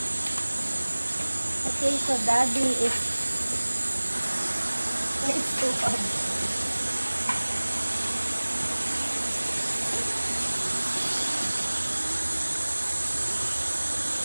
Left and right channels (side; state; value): both; inverted; correlation -1.00